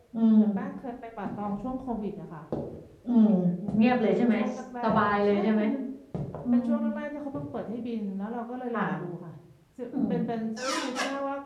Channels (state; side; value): identical; both; correlation 1.00